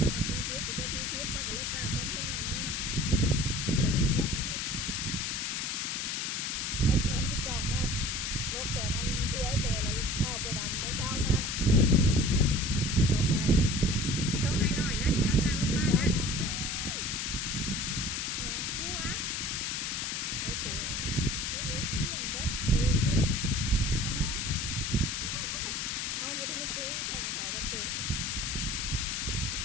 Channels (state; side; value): noise; left; hiss, 1 dB below the sound